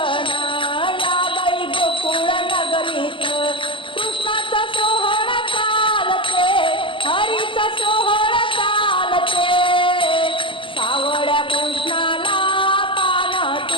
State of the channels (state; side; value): late; right; 0.25 ms